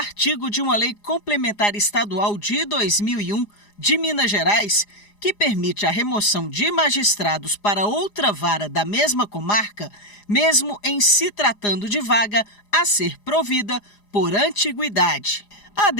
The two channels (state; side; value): late; right; 4.9 ms